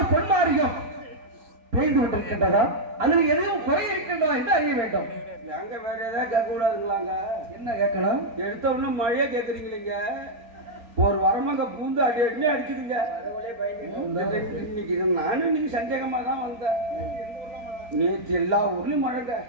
பொன்மாரியம் பெய்து கொண்டிருக்கின்றதா? அதில் எதையும் குறை இருக்கின்றதா என்று அறிய வேண்டும். எங்க வேற ஏதாவது கேட்க கூடாதுங்களாங்க? என்ன கேட்கலாம்? எடுத்த உடனே மழையே கேட்குறீங்களீங்க. ஒரு வரமாங்க பூந்து அடி அடினே அடிக்குதுங்க. இன்னைக்கு நானும் இன்னைக்கு சந்தேகமா தான் வந்தேன். நேற்று எல்லா ஊர்லயும் மழைங்க.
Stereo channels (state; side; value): late; left; 4.3 ms